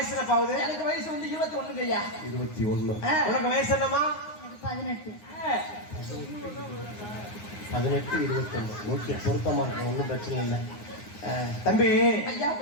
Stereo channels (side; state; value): right; late; 9.6 ms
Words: என்ன பாவுது? எனக்கு வயசு வந்து 21 ஐயா. 21. உனக்கு வயசு என்னமா? 18. 18 21. ஓகே, பொருத்தமா இருக்கு, ஒன்றும் பிரச்சனை இல்லை. தம்பி ஐயா